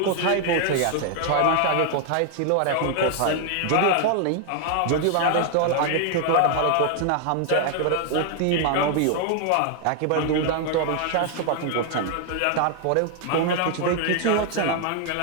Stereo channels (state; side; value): different; both; correlation 0.00